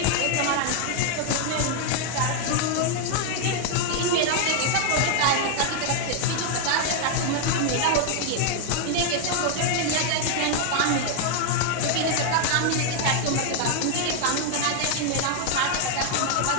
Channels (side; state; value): both; different; correlation 0.00